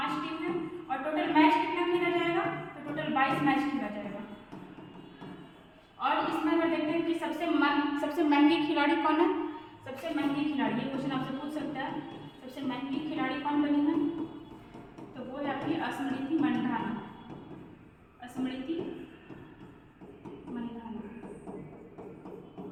टीम है। और टोटल मैच कितना खेला जाएगा? तो टोटल 22 मैच खेला जाएगा। और इसमें अगर देखते हैं कि सबसे महंगी खिलाड़ी कौन है? सबसे महंगी खिलाड़ी, ये क्वेश्चन आपसे पूछ सकता है, सबसे महंगी खिलाड़ी कौन बनी है? तो वो है आपकी स्मृति मंधाना, स्मृति मंधाना,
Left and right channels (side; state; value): both; identical; correlation 1.00